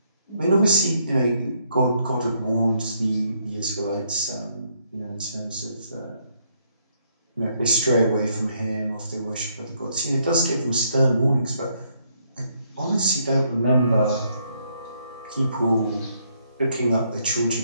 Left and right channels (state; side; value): inverted; both; correlation -0.72